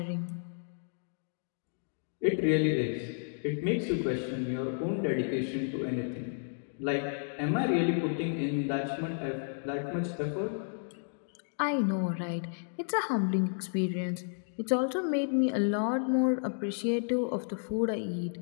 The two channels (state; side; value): silent; right; digital silence